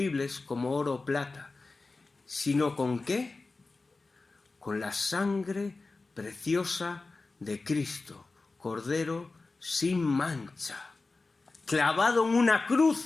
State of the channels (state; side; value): quieter; right; 3.6 dB